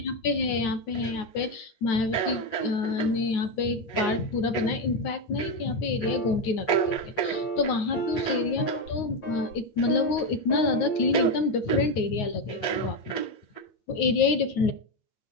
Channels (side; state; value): right; late; 9.5 ms